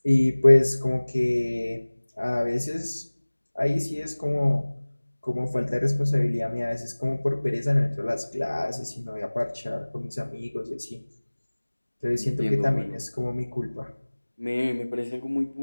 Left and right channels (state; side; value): inverted; both; correlation -1.00